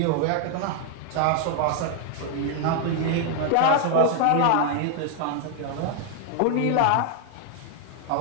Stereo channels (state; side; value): different; both; correlation 0.00